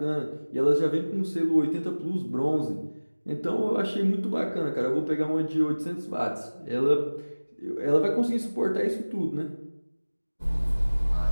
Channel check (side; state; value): both; inverted; correlation -1.00